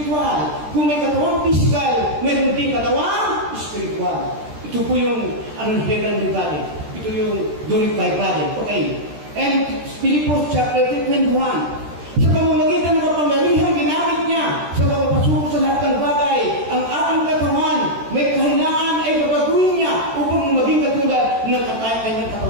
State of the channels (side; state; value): left; late; 13 ms